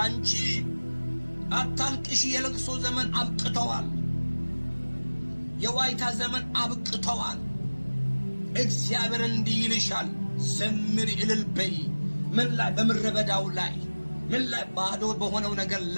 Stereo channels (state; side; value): inverted; both; correlation -1.00